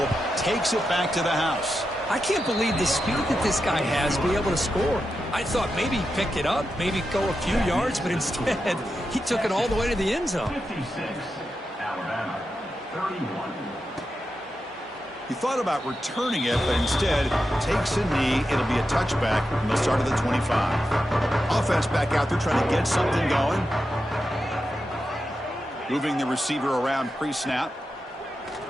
takes it back to the house. I can't believe the speed that this guy has to be able to score. I thought maybe he'd pick it up, maybe go a few yards, but instead he took it all the way to the end zone. 56, Alabama, 31. He thought about returning it, but instead takes a knee. It'll be a touchback, and they'll start at the 25. Offense back out there trying to get something going. Moving the receiver around pre-snap.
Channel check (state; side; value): normal; both; correlation 0.89